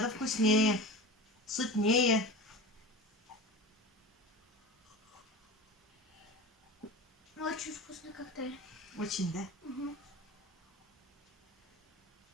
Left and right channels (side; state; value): both; normal; correlation 0.31